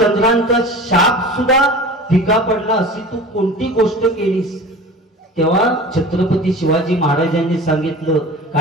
शाप सुद्धा फिका पडला, अशी तू कोणती गोष्ट केलीस. तेव्हा छत्रपती शिवाजी महाराजांनी सांगितलं,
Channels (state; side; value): normal; both; correlation 0.38